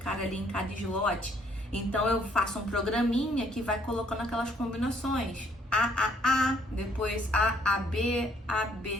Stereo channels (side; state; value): both; normal; correlation 0.65